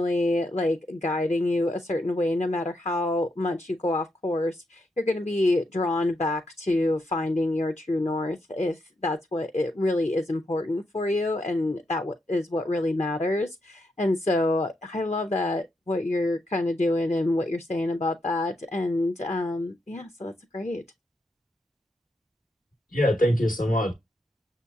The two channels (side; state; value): both; normal; correlation 0.81